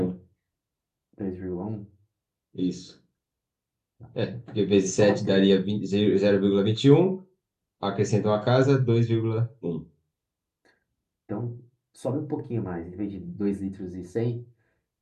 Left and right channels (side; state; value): both; identical; correlation 1.00